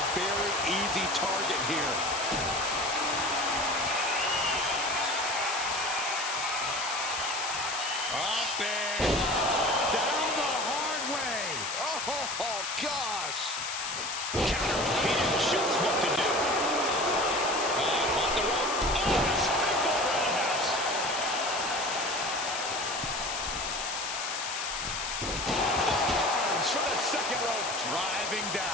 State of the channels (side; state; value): left; noise; hiss, 4 dB below the sound